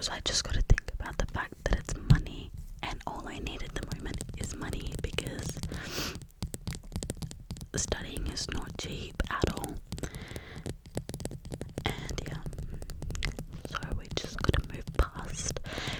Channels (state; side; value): identical; both; correlation 1.00